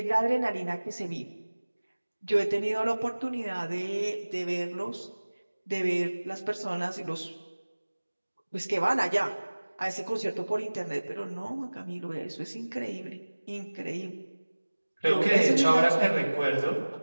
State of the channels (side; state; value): both; inverted; correlation -1.00